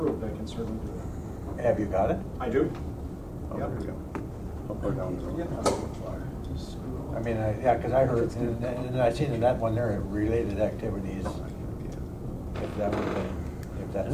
I can certainly do that. Have you got it? I do. oh, there we go. How far down the road? I mean, yeah, because I heard, and I seen in that one there, related activities. If that would be, if that's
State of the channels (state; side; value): identical; both; correlation 1.00